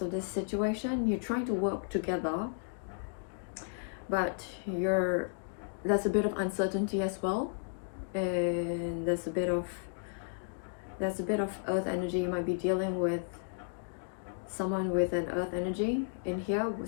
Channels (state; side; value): silent; right; digital silence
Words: of this situation. You're trying to work together, but there's a bit of uncertainty as well, and there's a bit of earth energy. You might be dealing with someone with an earth energy in here, with